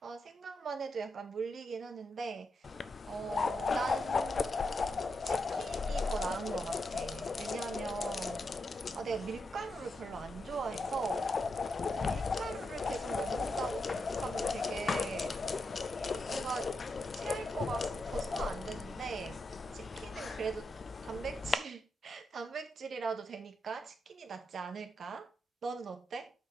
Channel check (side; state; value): both; normal; correlation 0.85